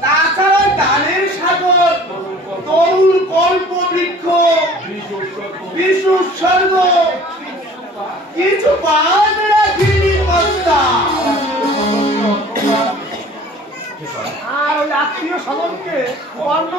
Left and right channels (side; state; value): both; normal; correlation 0.48